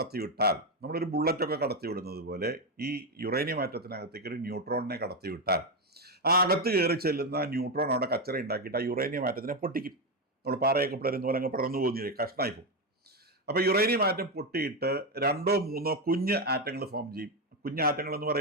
നമ്മളൊരു ബുള്ളറ്റൊക്കെ കടത്തിവിടുന്നത് പോലെ ഈ യുറേനിയം ആറ്റത്തിനകത്തേക്ക് ഒരു ന്യൂട്രോണിനെ കടത്തിവിട്ടാൽ ആ അകത്ത് കയറി ചെല്ലുന്ന ന്യൂട്രോൺ അവിടെ കച്ചറ ഉണ്ടാക്കിയിട്ട് ആ യുറേനിയം ആറ്റത്തിനെ പൊട്ടിക്കും. നമ്മൾ പാറയൊക്കെ പിളരുന്ന പോലെ അങ്ങ് പടർന്നു പോകുന്നില്ലേ, കഷ്ണമായി പോകും. അപ്പൊ യുറേനിയം ആറ്റം പൊട്ടിയിട്ട് 2 or 3 കുഞ്ഞ് ആറ്റങ്ങൾ ഫോം ചെയ്യും. കുഞ്ഞ് ആറ്റങ്ങൾ എന്ന്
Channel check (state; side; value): normal; both; correlation 0.09